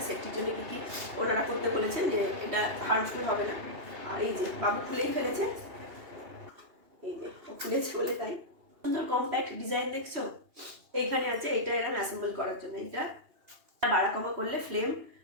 সেফটির জন্য কি কি ওনারা করতে বলেছেন যে এটা হার্মফুল হবে না। আর এই যে বাবু খুলেই ফেলেছে, এই যে খুলেছে বলে তাই সুন্দর কম্প্যাক্ট ডিজাইন দেখছো। এইখানে আছে এটা এরকম অ্যাসেম্বল করার জন্য, এটা বাড়া কমা করলে ফ্লেম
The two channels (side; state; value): left; late; 2.8 ms